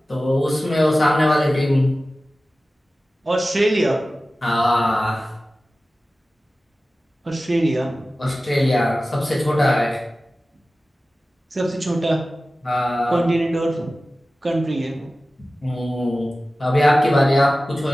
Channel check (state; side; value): normal; both; correlation 0.96